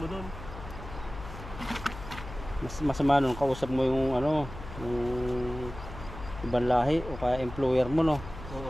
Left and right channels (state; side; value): noise; left; hum, 12 dB below the sound